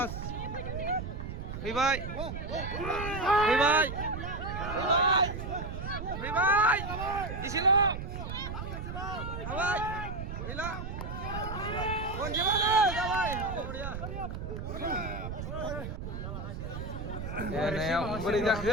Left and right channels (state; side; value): noise; right; rumble, 6 dB below the sound